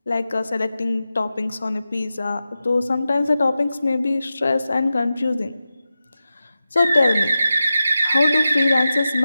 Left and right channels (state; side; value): inverted; both; correlation -0.92